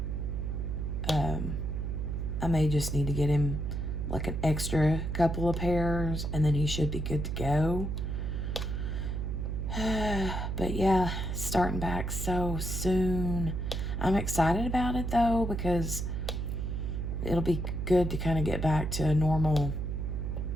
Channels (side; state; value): right; noise; hum, 2 dB below the sound